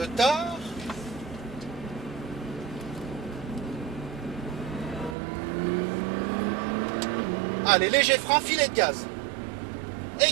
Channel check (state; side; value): drops out; left; at 5.2 s